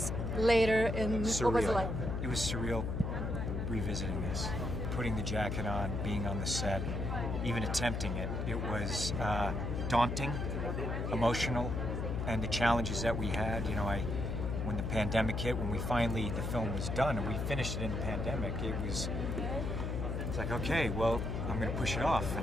later? And Surreal. what was it like? It was surreal revisiting this, putting the jacket on, being on the set, even attempting it. It was daunting, emotional, and the challenges that we had. You know, when the pandemic hit, when the film was done and we finished it in the pandemic, it's like, okay, well, I'm going to push it off.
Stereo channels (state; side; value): noise; left; hum, 2 dB below the sound